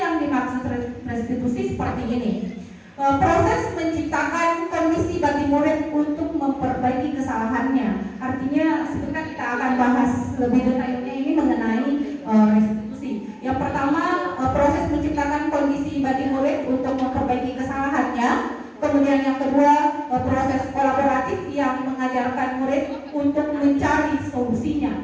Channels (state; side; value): identical; both; correlation 1.00